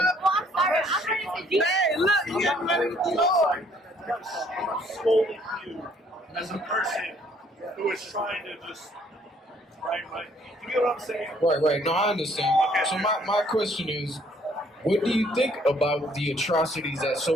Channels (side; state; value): both; normal; correlation 0.63